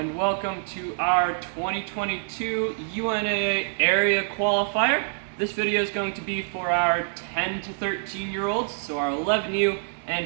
welcome to our 2022 UNAA area qualifier. This video is going to be for our 10 to 13 year olds, so our 11U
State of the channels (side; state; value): left; silent; digital silence